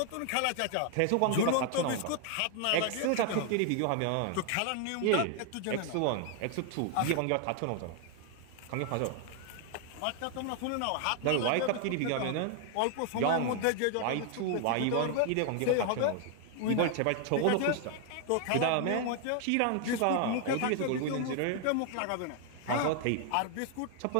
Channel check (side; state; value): both; different; correlation 0.00